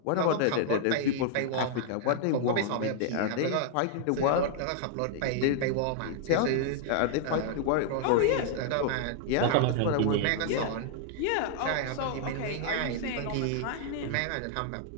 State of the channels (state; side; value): different; both; correlation 0.00